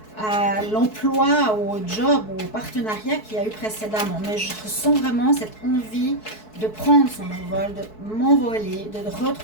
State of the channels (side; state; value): right; late; 4.6 ms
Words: à l'emploi, au job, au partenariat qu'il y a eu précédemment. Mais je ressens vraiment cette envie de prendre son envol, de m'envoler, de